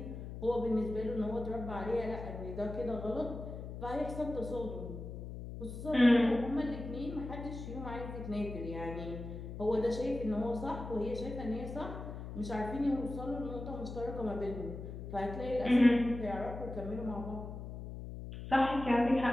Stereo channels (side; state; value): left; noise; hum, 9 dB below the sound